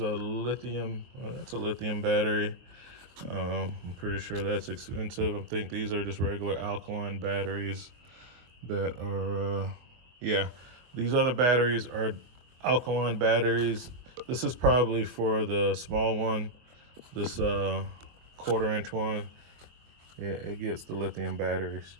lithium, that's a lithium battery. I'm pretty sure that's expensive. I think these are just regular alkaline batteries that are, yeah, these other batteries are alkaline batteries. This is probably for the small one, this 1/4-inch one. Yeah, it gets the lithium batteries.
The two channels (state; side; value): late; left; 23 ms